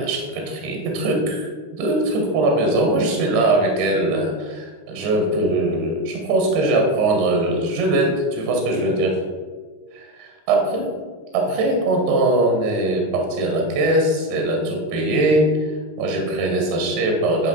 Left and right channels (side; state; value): left; late; 19 ms